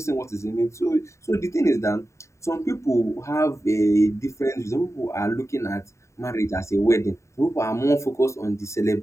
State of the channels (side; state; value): right; late; 0.14 ms